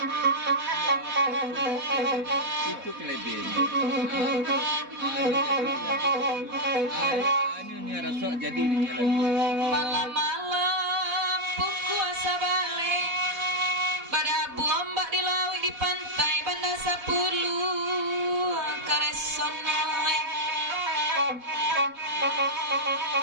kelebihannya. Ini rasok jadi ini lagi. Malam-malam puasa balik pada bombak di laut di pantai Banda 10 karesonoe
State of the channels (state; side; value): late; left; 4.1 ms